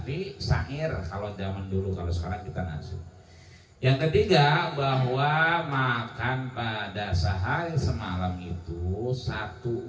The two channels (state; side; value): identical; both; correlation 1.00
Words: syair kalau zaman dulu, kalau sekarang kita nasi. Yang ketiga, bahwa makan pada sehari semalam itu 1